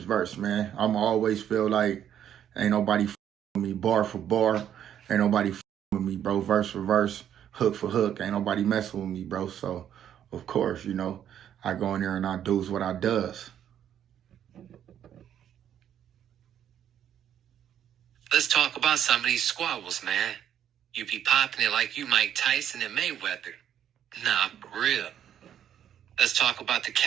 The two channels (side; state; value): left; quieter; 9.9 dB